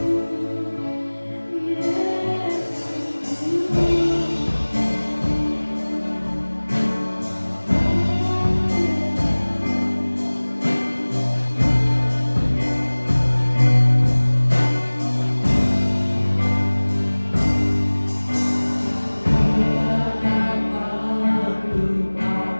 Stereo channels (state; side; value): inverted; both; correlation -1.00